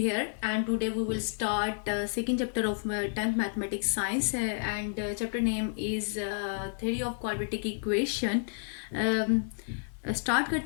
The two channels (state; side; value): silent; right; digital silence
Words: and today we will start second chapter of 10th mathematics science and chapter name is theory of quadratic equation. Start